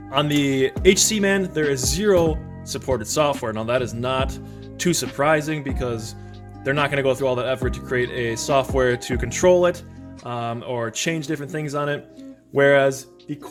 the HC Man, there is 0 supported software. Now that is not too surprising because they're not going to go through all that effort to create a software to control it or change different things on it. Whereas the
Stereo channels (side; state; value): both; identical; correlation 1.00